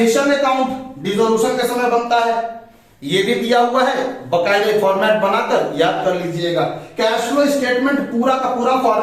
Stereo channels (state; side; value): identical; both; correlation 1.00